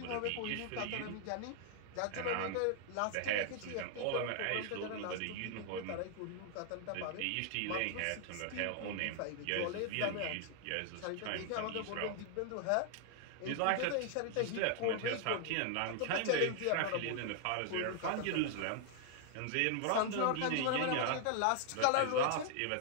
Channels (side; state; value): both; different; correlation 0.00